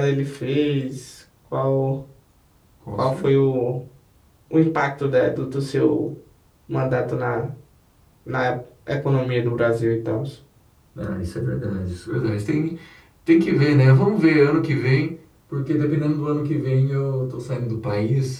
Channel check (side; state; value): both; identical; correlation 1.00